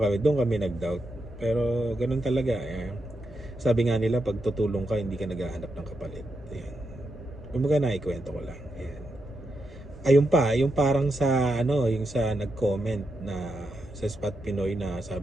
kami, doon kami nag-doubt. Pero ganun talaga. Sabi nga nila, pag tutulong ka, hindi ka naghahanap ng kapalit. Ayan. Kumbaga naikwento ko lang. Ayan. Ayun pa, yung parang sa yung sa nag-comment na sa Spot Pinoy na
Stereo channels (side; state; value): both; normal; correlation 0.85